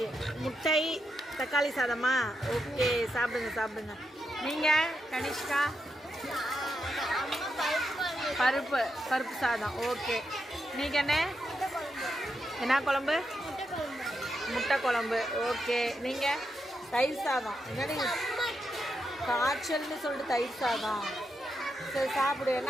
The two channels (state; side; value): normal; both; correlation 0.84